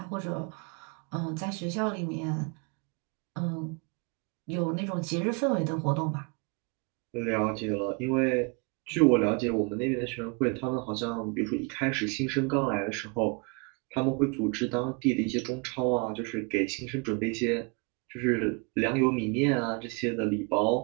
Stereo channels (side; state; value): left; quieter; 32.8 dB